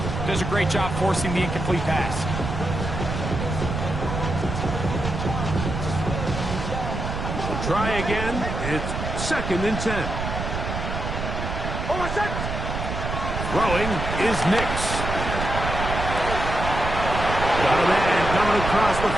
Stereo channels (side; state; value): right; noise; rumble, 4 dB below the sound